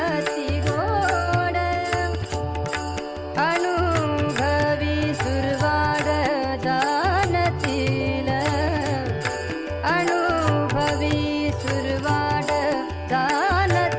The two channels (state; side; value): identical; both; correlation 1.00